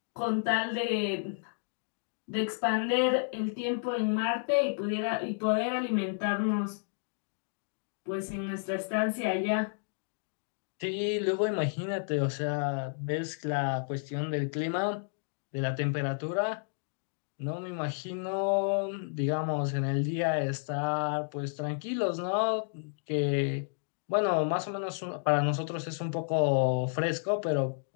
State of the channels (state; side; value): silent; right; digital silence